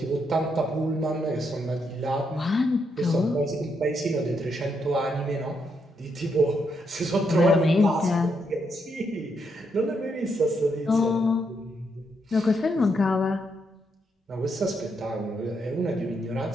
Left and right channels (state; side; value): normal; both; correlation 0.78